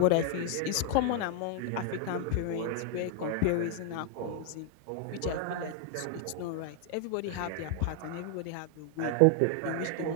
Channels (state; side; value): different; both; correlation 0.00